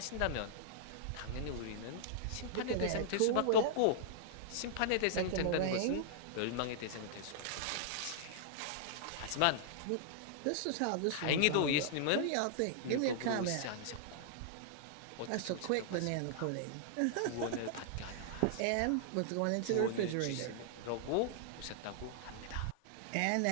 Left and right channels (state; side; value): different; both; correlation -0.01